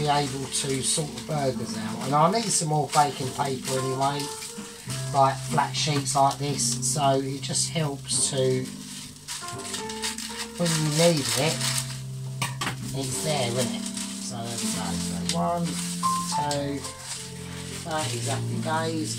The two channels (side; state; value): both; identical; correlation 1.00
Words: be able to sort the burgers out. And I need some more baking paper anyway, like flat sheets like this, so it just helps to, when you need it, it's there, isn't it? So there we go. So 1, 2, that is happy